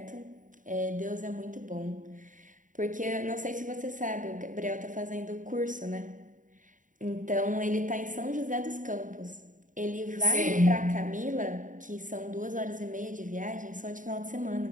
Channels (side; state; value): left; late; 0.38 ms